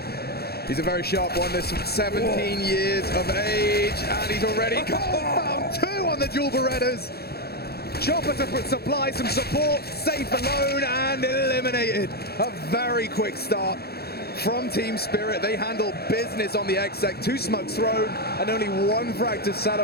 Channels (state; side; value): late; right; 0.46 ms